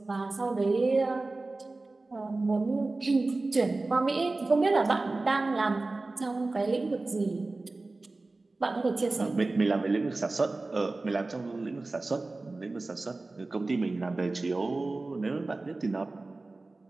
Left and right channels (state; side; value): quieter; left; 3.3 dB